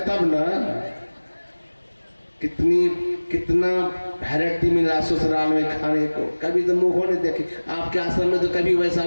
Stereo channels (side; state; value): both; inverted; correlation -1.00